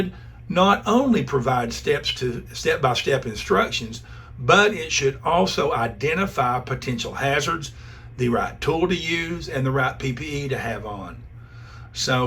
not only provide step-by-step instructions, but it should also identify potential hazards, the right tool to use, and the right PPE to have on.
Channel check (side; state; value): both; identical; correlation 1.00